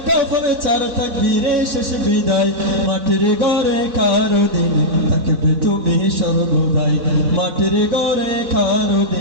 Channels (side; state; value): left; late; 4.0 ms